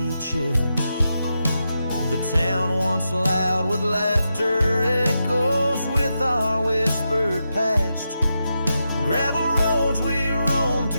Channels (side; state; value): both; inverted; correlation -0.87